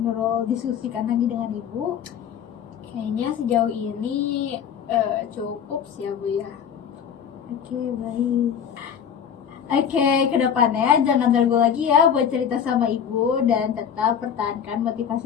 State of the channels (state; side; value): quieter; right; 8.0 dB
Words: Nurul diskusikan lagi dengan Ibu? Kayaknya sejauh ini cukup sih ya Bu ya. Oke, baik. Oke, kedepannya jangan ragu lagi ya buat cerita sama Ibu, dan tetap pertahankan